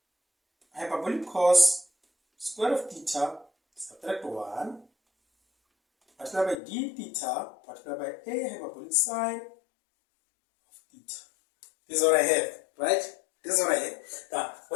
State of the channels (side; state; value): right; drops out; at 6.6 s